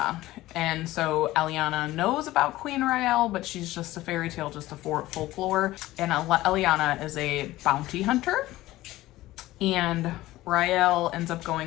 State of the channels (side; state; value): right; quieter; 16.8 dB